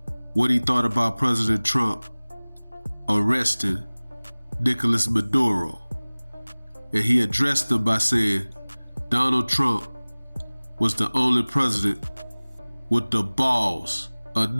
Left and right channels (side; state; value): both; inverted; correlation -1.00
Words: what he thought about President Trump arresting Nicolas Maduro, and he addressed him by saying Donald Trump was the only president with the balls